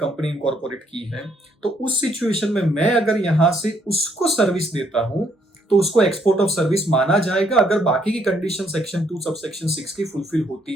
इनकॉर्पोरेट की है, तो उस सिचुएशन में मैं अगर यहां से उसको सर्विस देता हूं तो उसको एक्सपोर्ट ऑफ सर्विस माना जाएगा अगर बाकी की कंडीशन सेक्शन 2 सबसेक्शन 6 की फुलफिल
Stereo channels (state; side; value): normal; both; correlation 0.70